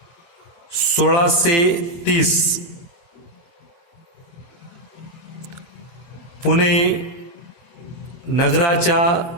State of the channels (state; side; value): late; right; 23 ms